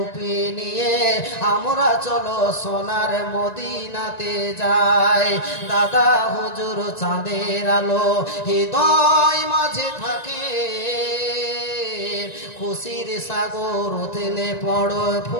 নিয়ে আমরা চলো সোনার মদিনাতে যাই দাদা হুজুর চাঁদের আলো হৃদয় মাঝে থাকে খুশির সাগর উথলে পড়ো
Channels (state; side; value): late; right; 1.9 ms